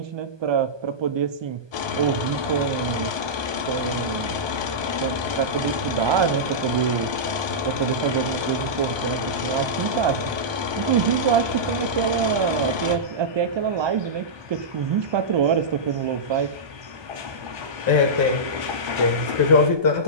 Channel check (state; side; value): late; left; 1.2 ms